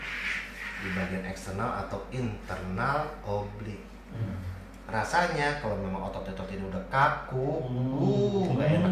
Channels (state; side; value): identical; both; correlation 1.00